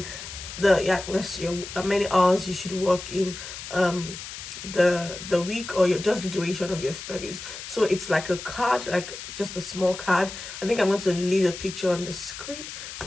how many hours you should work in the week, or just the duration of your studies. So it's like a card, like just a small card. I think I'm going to leave a picture on the screen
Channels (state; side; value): noise; left; hiss, 10 dB below the sound